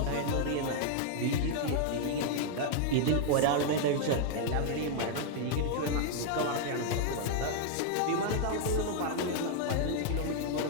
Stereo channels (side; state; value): both; different; correlation 0.00